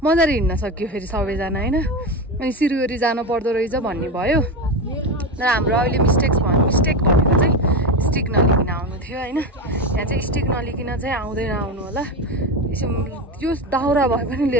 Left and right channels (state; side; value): normal; both; correlation 0.18